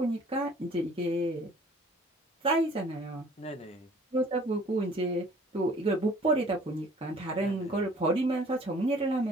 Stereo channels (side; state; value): both; normal; correlation 0.53